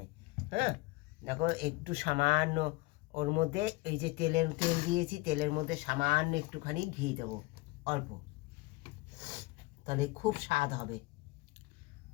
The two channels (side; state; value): right; quieter; 22.5 dB